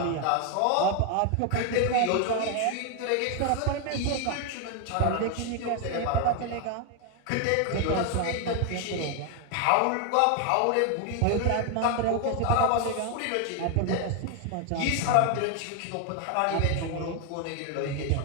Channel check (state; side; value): different; both; correlation 0.01